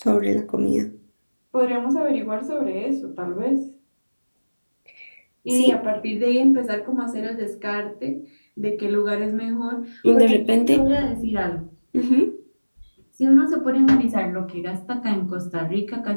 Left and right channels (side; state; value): both; inverted; correlation -1.00